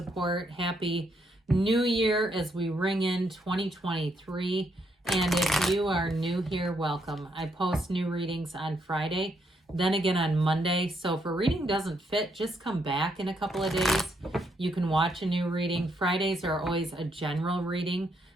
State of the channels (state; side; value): normal; both; correlation 0.75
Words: Happy New Year as we ring in 2023. And if you are new here, welcome. I post new readings on Friday, then again on Monday. So if a reading doesn't fit, just come back in a couple of days. You can watch a new reading. Fridays are always a general reading.